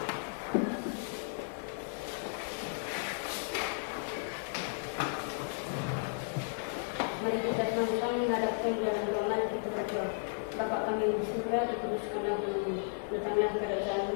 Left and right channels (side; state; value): right; silent; 55 dB below the other